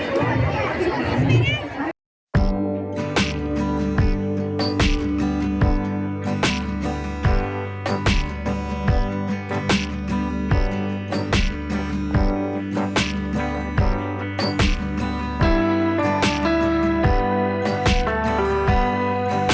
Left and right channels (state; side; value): identical; both; correlation 1.00